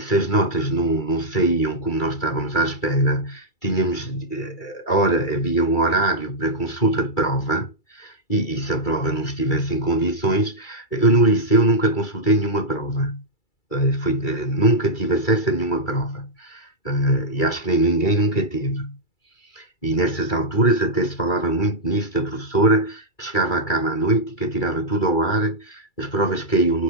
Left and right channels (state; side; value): late; right; 2.3 ms